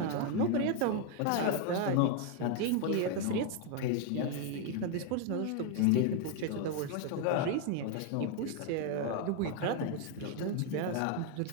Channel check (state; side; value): different; both; correlation 0.01